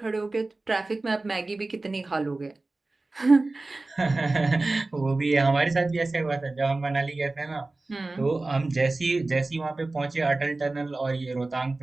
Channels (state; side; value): quieter; left; 3.2 dB